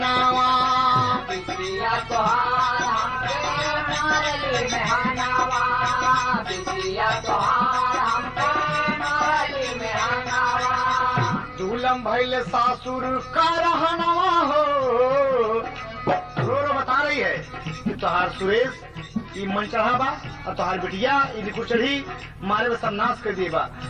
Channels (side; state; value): both; identical; correlation 1.00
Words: बिटिया तोहार हमके मारेली मेहनवा। बिटिया तोहार हमके मारेली मेहनवा। दूलम भैल सासुर का रहनवा हो। रो बता रही है कि तोहार सुरेश ई मन चढ़ा बा और तोहार बिटिया ई लिखु चढ़ी मारे में सर्वनाश कर दिए बा।